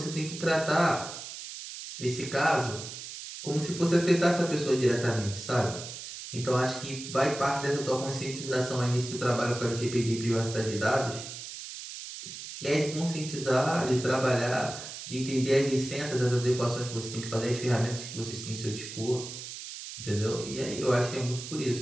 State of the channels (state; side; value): noise; right; hiss, 10 dB below the sound